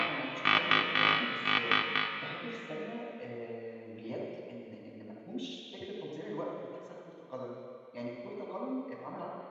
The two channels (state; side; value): identical; both; correlation 1.00